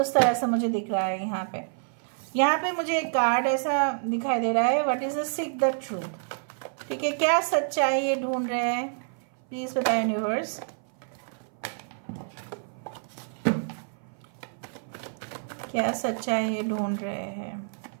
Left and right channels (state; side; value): silent; left; 58 dB below the other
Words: तरह से मुझे दिख रहा है यहाँ पे। यहाँ पे मुझे एक कार्ड ऐसा दिखाई दे रहा है, what is the seek the truth, ठीक है। क्या सच्चाई ये ढूंढ रहे हैं? प्लीज बताएं यूनिवर्स। क्या सच्चाई ये ढूंढ रहे हैं?